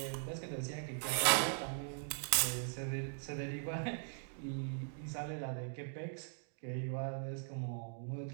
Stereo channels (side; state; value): left; silent; digital silence